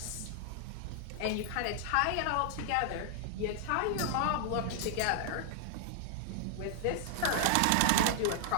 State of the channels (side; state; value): both; different; correlation -0.01